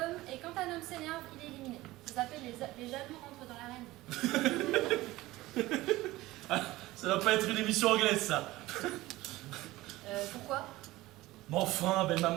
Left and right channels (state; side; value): quieter; left; 18.2 dB